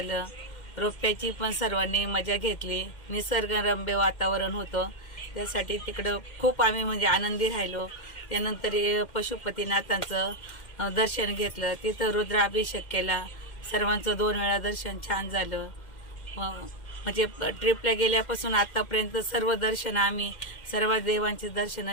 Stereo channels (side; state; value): right; late; 2.1 ms